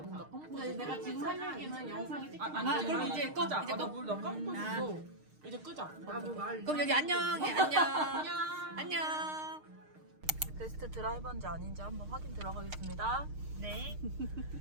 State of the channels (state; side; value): late; left; 6.5 ms